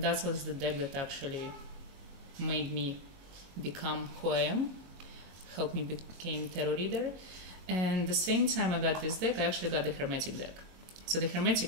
that was the deck that actually made me become who I am, helped me become tarot reader. And the same time I got this deck, I actually got the Hermetic deck. So the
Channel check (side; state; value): left; late; 22 ms